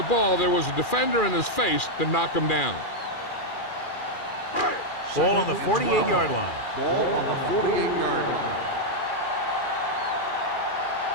ball, there was a defender in his face to knock him down. Ball on the 48-yard line. Ball on the 48-yard line.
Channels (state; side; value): late; right; 2.4 ms